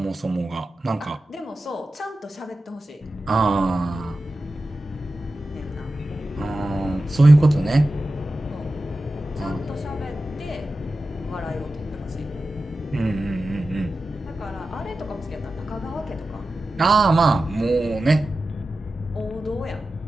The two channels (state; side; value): normal; both; correlation 0.93